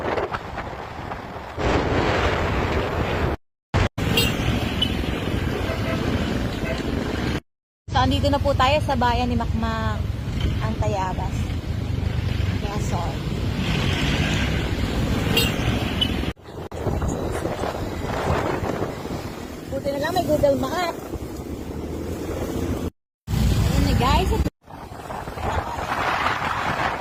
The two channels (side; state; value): both; identical; correlation 1.00